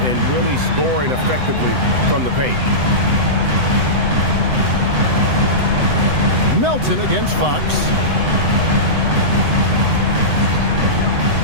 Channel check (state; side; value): late; left; 7.9 ms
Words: and really scoring effectively from the paint. Melton against Fox.